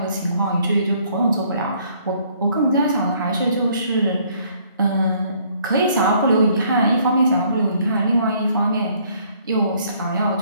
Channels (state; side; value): inverted; both; correlation -0.63